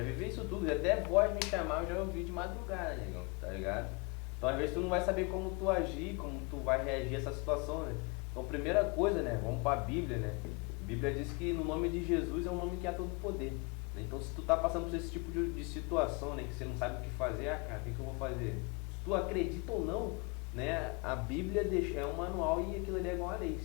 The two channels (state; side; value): quieter; right; 30.5 dB